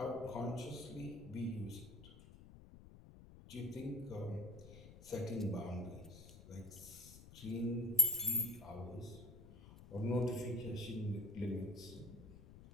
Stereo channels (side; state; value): left; noise; rumble, 17 dB below the sound